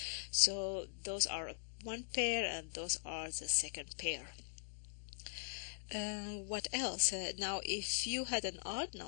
So those are one pair and those are the second pair. What else? Now if you had an odd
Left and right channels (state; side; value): silent; right; digital silence